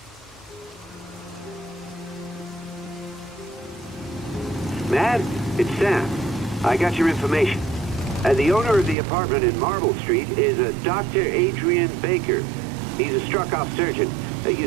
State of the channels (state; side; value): drops out; left; at 9.0 s